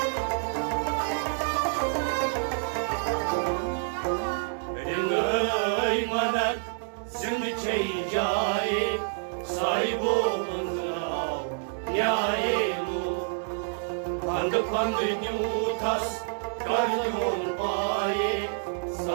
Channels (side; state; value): left; silent; digital silence